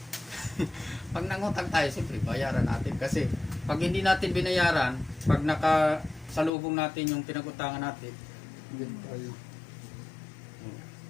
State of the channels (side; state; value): right; drops out; at 6.5 s